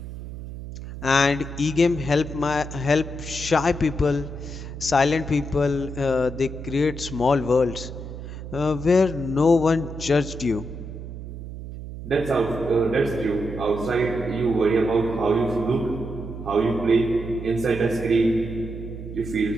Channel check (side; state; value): right; noise; hum, 10 dB below the sound